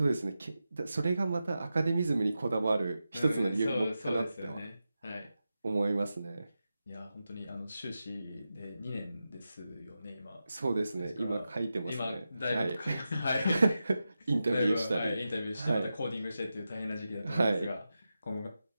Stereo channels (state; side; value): inverted; both; correlation -0.91